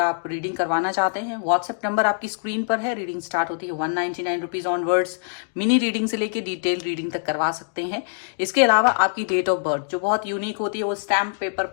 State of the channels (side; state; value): right; silent; digital silence